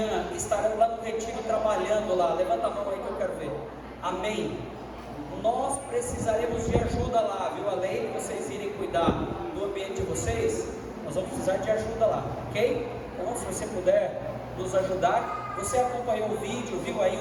estarão lá no retiro trabalhando lá? Levanta a mão aí que eu quero ver. Amém. Nós precisaremos de ajuda lá, viu? Além de vocês irem cuidar do ambiente de vocês, nós vamos precisar de ajuda lá, ok? Então, se você puder nos ajudar, você acompanhou o vídeo, viu aí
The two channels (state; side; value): identical; both; correlation 1.00